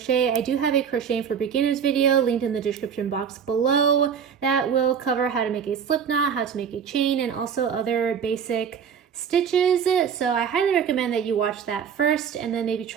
I do have a crocheting for beginners video linked in the description box below that will cover how to make a slip knot, how to make a chain, and also other basic stitches. So I highly recommend that you watch that first and then maybe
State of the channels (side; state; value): left; quieter; 7.4 dB